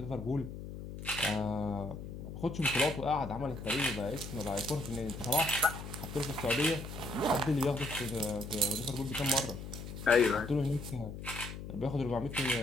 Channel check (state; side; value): noise; left; hum, 9 dB below the sound